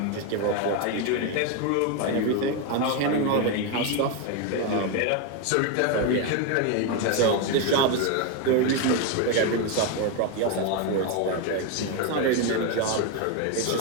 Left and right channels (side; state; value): both; different; correlation 0.02